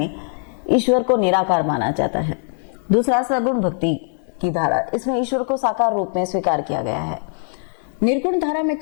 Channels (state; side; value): silent; right; 64 dB below the other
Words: ईश्वर को निराकार माना जाता है। दूसरा सगुण भक्ति की धारा, इसमें ईश्वर को साकार रूप में स्वीकार किया गया है। निर्गुण धारा में